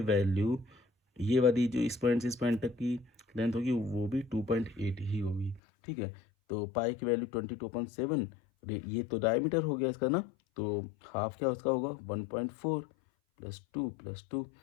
वैल्यू ये वाली जो इस पॉइंट से इस पॉइंट तक की लेंथ होगी वो भी 2.8 ही होगी। ठीक है, तो पाई की वैल्यू 22/7, ये तो डायमीटर हो गया इसका ना, तो हाफ क्या उसका होगा 1.4 प्लस टू,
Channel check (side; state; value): right; drops out; at 5.6 s